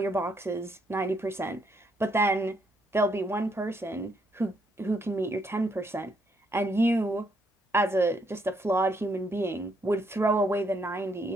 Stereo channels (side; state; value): both; normal; correlation 0.73